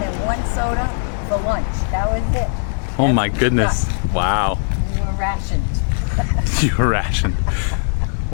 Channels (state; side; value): silent; right; 67 dB below the other